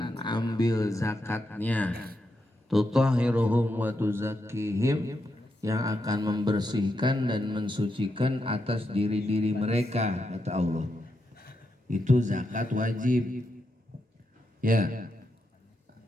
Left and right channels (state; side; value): normal; both; correlation 0.84